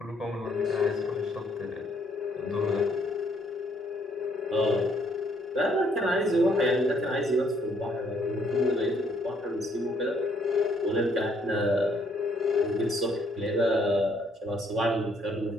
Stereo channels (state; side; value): normal; both; correlation 0.67